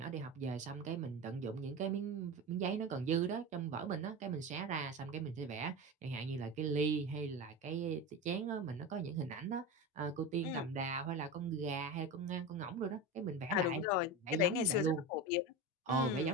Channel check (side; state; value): both; normal; correlation 0.24